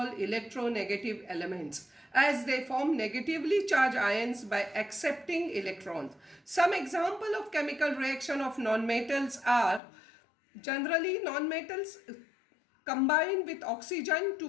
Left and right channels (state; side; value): drops out; right; at 9.8 s